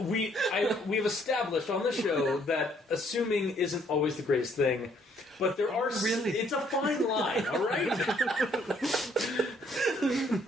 established on the show that assuming isn't always the greatest thing, but there are... Really? It's a fine line, all right?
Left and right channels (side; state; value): both; normal; correlation 0.66